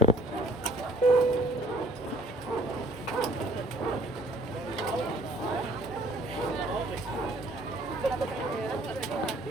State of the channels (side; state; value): both; normal; correlation 0.58